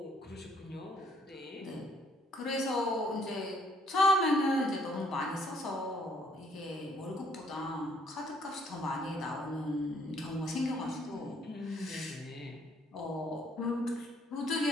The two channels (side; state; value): both; normal; correlation 0.65